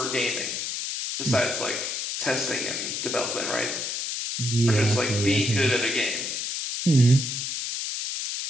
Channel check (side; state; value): left; noise; hiss, 3 dB below the sound